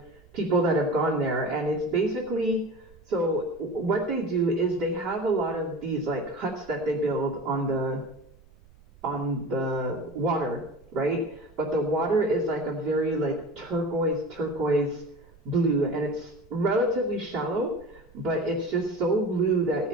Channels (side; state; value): right; noise; rumble, 26 dB below the sound